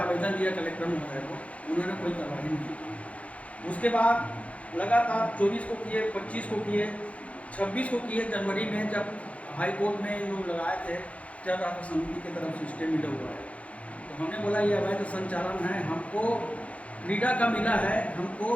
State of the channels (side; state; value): right; late; 0.065 ms